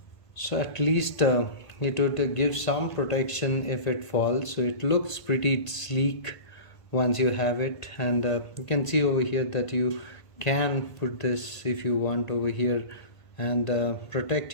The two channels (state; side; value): late; right; 1.5 ms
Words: So at least it would give some protection if it falls. So it looks pretty sleek once you have it, and you can see over here that you can put this if you want over here, and protect